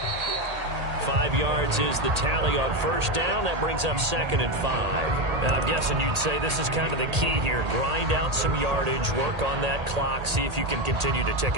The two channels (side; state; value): left; late; 1.8 ms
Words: 5 yards is the tally on first down. That brings up 2nd and 5. Now, I'm guessing you'd say this is kind of the key here. Grind out some yardage, work on that clock, see if you can continue to tick